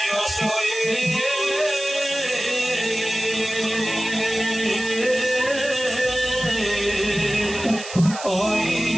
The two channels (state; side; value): noise; right; hiss, 11 dB below the sound